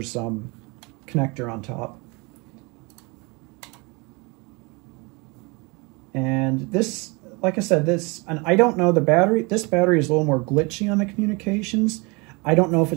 connector on top. And this, like I said, and I don't know, this battery is a little more glitchy on the communications. I don't know if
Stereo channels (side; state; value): left; quieter; 28.1 dB